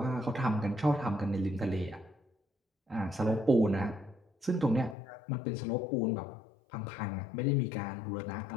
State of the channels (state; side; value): drops out; right; at 5.0 s